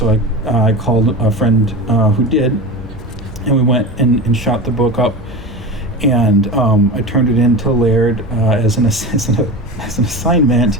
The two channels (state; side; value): noise; right; hum, 21 dB below the sound